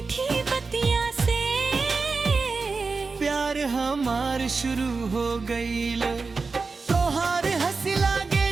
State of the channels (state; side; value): quieter; left; 4.3 dB